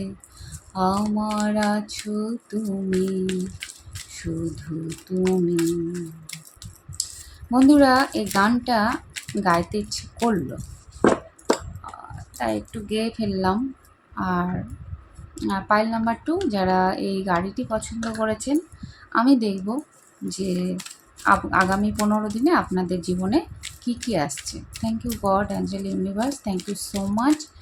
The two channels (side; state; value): both; identical; correlation 1.00